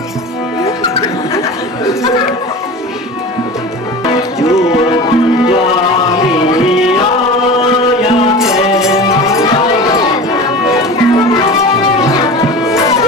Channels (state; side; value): normal; both; correlation 0.34